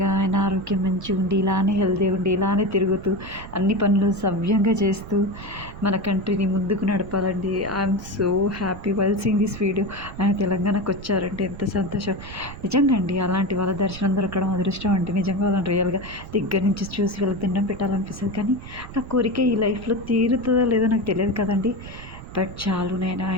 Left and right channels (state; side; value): noise; right; rumble, 13 dB below the sound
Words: ఆయన ఆరోగ్యం మంచిగా ఉండి, ఇలానే హెల్తీ ఉండి, ఇలానే తిరుగుతూ అన్ని పనులు సవ్యంగా చేస్తూ మన కంట్రీని ముందుకు నడపాలండి. I'm so happy while seeing this video. ఆయన తెలంగాణకు వచ్చారంటే ఎంత సంతోషం. నిజంగా అండి, అలాంటి వాళ్ళ దర్శనం దొరకడం అదృష్టం అండి. నిజంగా వాళ్ళని రియల్గా దగ్గర నుంచి చూసి వాళ్ళకి దండం పెట్టాలనిపిస్తుంది. కానీ ఆ కోరిక ఈ లైఫ్లో తీరుతుందో లేదో నాకు తెలియదు కదండి. బట్ చాలు, నేను